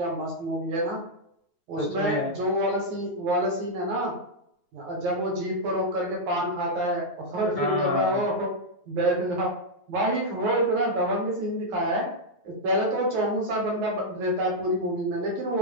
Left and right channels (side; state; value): left; late; 9.2 ms